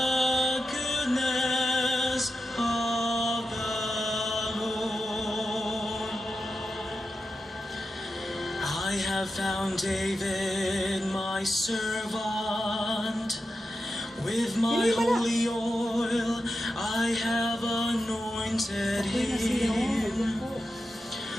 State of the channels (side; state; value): both; normal; correlation 0.90